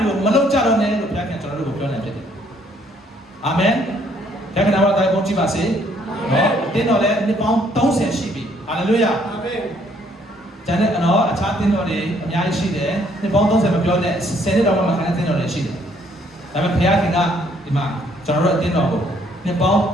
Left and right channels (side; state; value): both; normal; correlation 0.66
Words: ွေကိုမလုပ်ကြတော့နဲ့လို့ဘုရားကကျွန်တော်တို့ကိုပြောနေဖြစ်တယ်။အာမင်။ဘုရားကနာမတော်ကိုကြည့်ပါစေ။နော်တင်းတော်လည်းနှစ်ပေါင်း30ရှိပြီ။ဟာလေလုယာ။အာမင်။ကျန်တဲ့နော်အခြားတင်းတော်တွေအများကြီးရှိတယ်။နှစ်ပေါင်း30မပြောနဲ့10နှစ်တော့မှခံတဲ့တင်းတော်တွေရှိတယ်။ဒါပေမဲ့ဘုရားခင်ကဒီမှာကျွန်တော်တို့အတင်းတော်ကိုနှစ်ပေါင်း